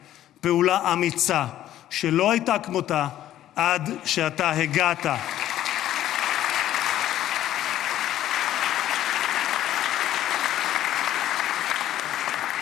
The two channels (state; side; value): quieter; right; 12.6 dB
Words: פעולה אמיצה שלא הייתה כמותה עד שאתה הגעת.